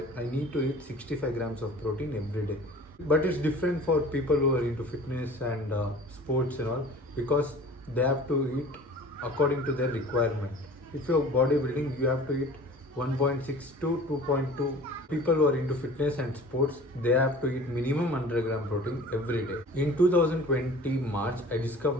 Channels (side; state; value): both; normal; correlation 0.44